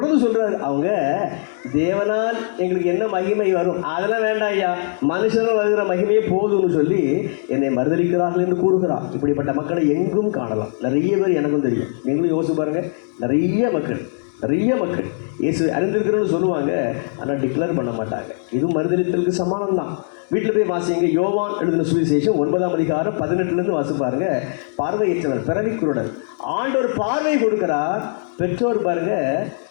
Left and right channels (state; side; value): silent; right; digital silence